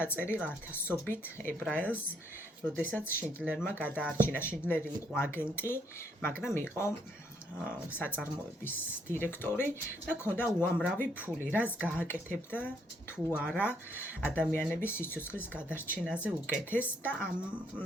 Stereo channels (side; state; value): both; normal; correlation 0.71